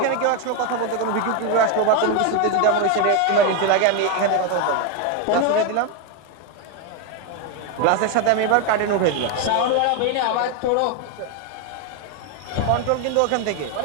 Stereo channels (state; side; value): different; both; correlation 0.02